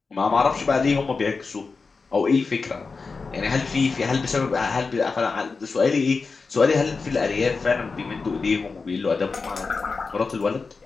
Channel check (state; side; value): quieter; right; 4.5 dB